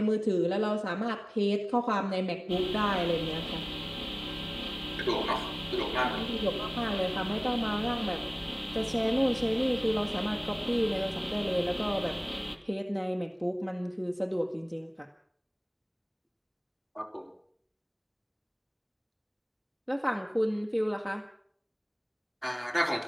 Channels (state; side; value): identical; both; correlation 1.00